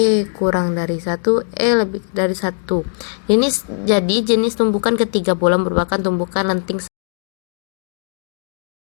kurang dari 1, E lebih dari 1. Jadi jenis tumbukan ketiga bola merupakan tumbukan lenting.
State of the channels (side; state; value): right; silent; digital silence